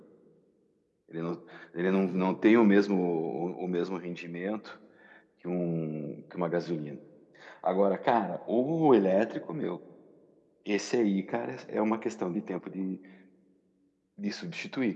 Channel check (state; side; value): identical; both; correlation 1.00